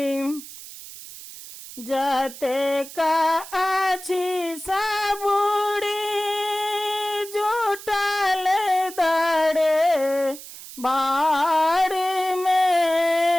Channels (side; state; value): right; noise; hiss, 14 dB below the sound